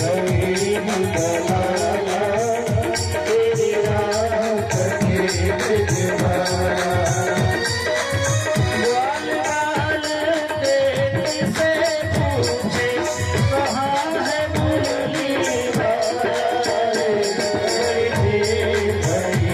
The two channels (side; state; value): both; identical; correlation 1.00